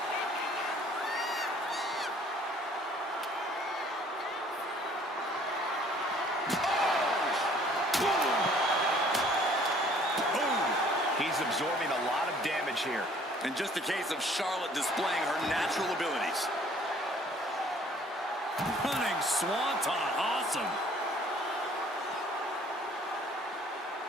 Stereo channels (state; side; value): normal; both; correlation 0.57